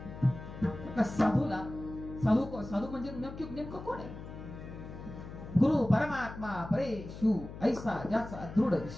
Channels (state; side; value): noise; left; hum, 12 dB below the sound